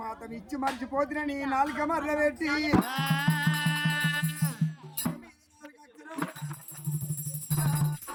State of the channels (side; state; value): both; identical; correlation 1.00